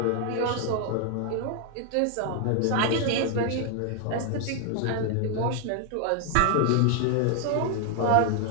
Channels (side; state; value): both; different; correlation 0.00